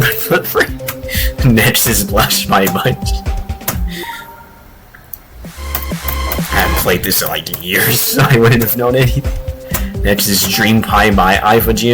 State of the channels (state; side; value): identical; both; correlation 1.00